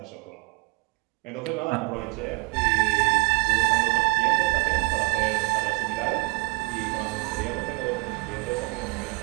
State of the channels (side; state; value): left; quieter; 27.6 dB